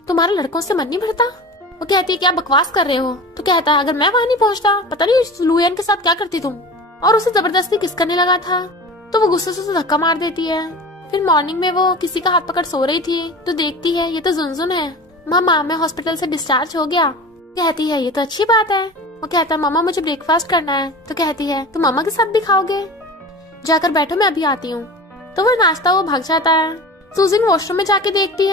तुम्हारा लड़कों से मन नहीं भरता? वो कहती है क्या बकवास कर रहे हो? तो कहता है अगर मैं वहाँ नहीं पहुँचता पता नहीं लुयन के साथ क्या करती तुम, और उसे जबरदस्ती किस करने लगा था। तो वो गुस्से से उसे धक्का मार देती है। फिर मॉर्निंग में वो किसी का हाथ पकड़ सो रही थी तो देखती है ये तो जुनजुन है। मामा मैं हॉस्पिटल से डिस्चार्ज हो गया। कहती है ये तो अच्छी बात है। वो कहता है मामा मुझे ब्रेकफास्ट करना है। तो कहती है तुम मामा के साथ भी खाओगे? जाकर बैठो मैं अभी आती हूँ। तो वो नाश्ता वो भाग जाता है। सुजिन वॉशरूम में जाके देखती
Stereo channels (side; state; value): both; normal; correlation 0.35